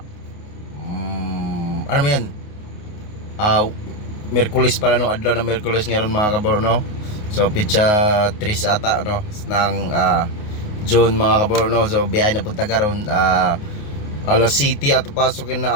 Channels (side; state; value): right; late; 28 ms